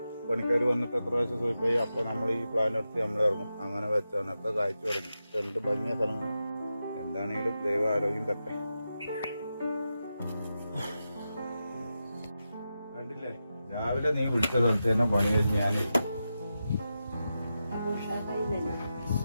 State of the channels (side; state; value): both; inverted; correlation -0.90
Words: പണിക്കാർ വന്നിട്ട് എത്ര പ്രാവശ്യം സൂയിപ്പായി അപ്പൊ നമ്മൾ ഈ പ്ലാൻ എടുത്ത് നമ്മൾ ഇറങ്ങും. അങ്ങനെ വെച്ചാണ് ഒക്കെ കാഴ്ച തുടങ്ങി. എന്ത് ഭംഗിയ സ്ഥലങ്ങൾ. എന്താണെങ്കിലും ദൈവ ആരോഗ്യം തട്ടെ. കണ്ടില്ലേ, രാവിലെ നീ വിളിച്ച സ്ഥലത്ത് തന്നെ പണി കഴിഞ്ഞ് ഞാൻ